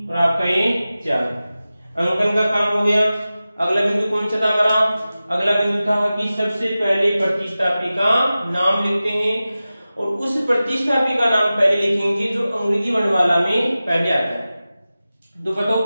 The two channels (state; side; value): inverted; both; correlation -0.95